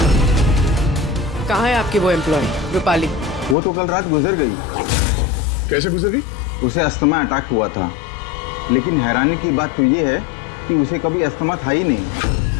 कहाँ है आपकी वो एम्प्लॉय रूपाली? वो तो कल रात गुजर गई। कैसे गुजर गई? उसे अस्थमा अटैक हुआ था, लेकिन हैरानी की बात तो ये है कि उसे कभी अस्थमा था ही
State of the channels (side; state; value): right; drops out; at 3.6 s